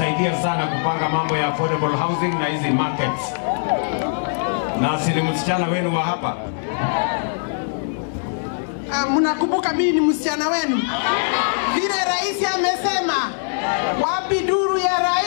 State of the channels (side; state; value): right; silent; 65 dB below the other